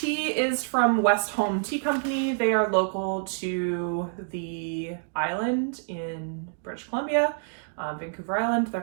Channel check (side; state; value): left; silent; digital silence